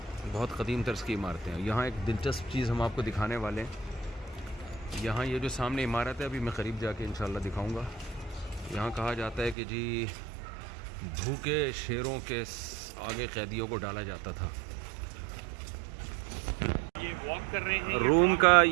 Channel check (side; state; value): left; drops out; at 9.6 s